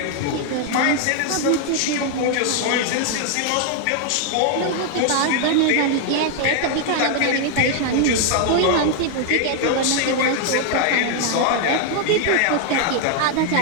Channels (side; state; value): both; different; correlation 0.00